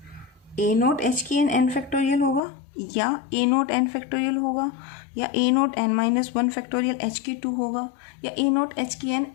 a naught h की एन एन फैक्टोरियल होगा या ए नोट एन फैक्टोरियल होगा या a naught n minus one factorial h की 2 होगा या ए नोट एच की n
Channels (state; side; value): drops out; right; at 2.4 s